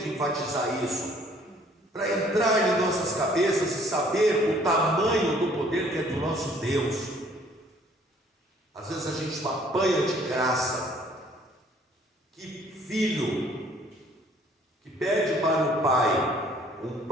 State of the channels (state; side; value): normal; both; correlation 0.59